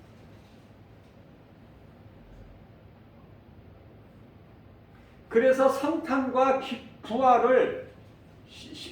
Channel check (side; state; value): both; identical; correlation 1.00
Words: 그래서 성탄과 부활을,